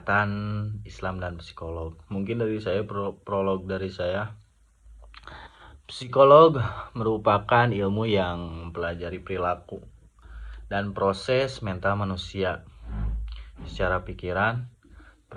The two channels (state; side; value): identical; both; correlation 1.00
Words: Islam dan psikolog. Mungkin dari saya prolog dari saya. Psikolog merupakan ilmu yang mempelajari perilaku dan proses mental manusia secara pikiran,